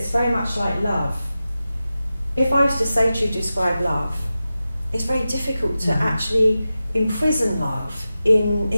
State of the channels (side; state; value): both; inverted; correlation -0.93